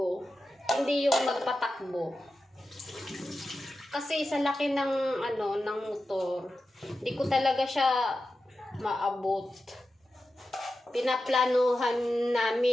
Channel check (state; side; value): normal; both; correlation 0.92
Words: hindi yung magpatakbo. Kasi sa laki ng ng motor, hindi ko talaga siya maabot. Pinaplanuhan